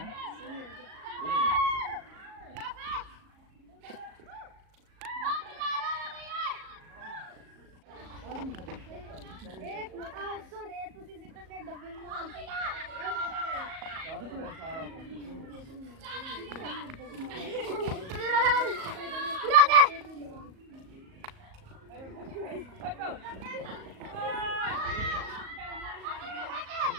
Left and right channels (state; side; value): late; left; 38 ms